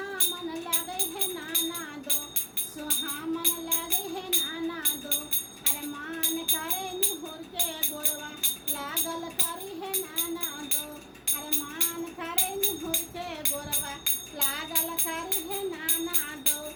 लगे है नाना दो, सुहामन लगे है नाना दो। अरे मान करे निहुर के गोरवा लागल करी है नाना दो। अरे मान करे निहुर के गोरवा लागल करी है नाना दो।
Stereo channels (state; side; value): identical; both; correlation 1.00